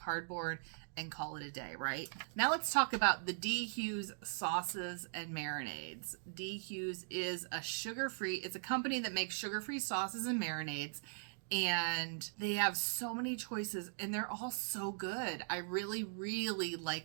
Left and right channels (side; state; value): left; silent; digital silence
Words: and call it a day, right? Now let's talk about the D. Hughes sauces and marinades. D. Hughes is it's a company that makes sugar-free sauces and marinades, and they have so many choices, and they're all so good. I really, really